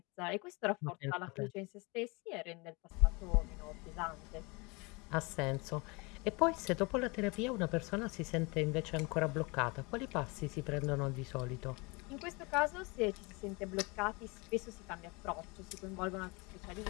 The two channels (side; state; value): right; quieter; 27.6 dB